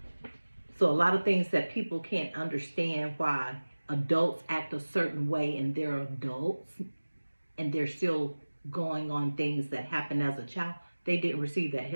So a lot of things that people can't understand why adults act a certain way, and they're adults and they're still going on things that happened as a child. They didn't receive that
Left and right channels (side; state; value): both; inverted; correlation -1.00